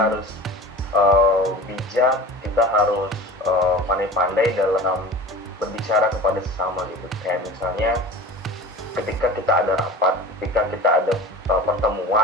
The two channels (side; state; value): both; normal; correlation 0.36